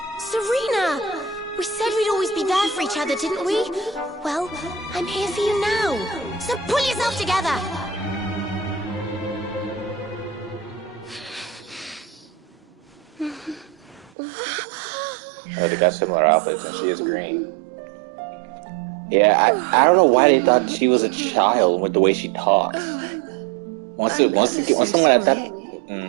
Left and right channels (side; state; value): left; drops out; at 14.1 s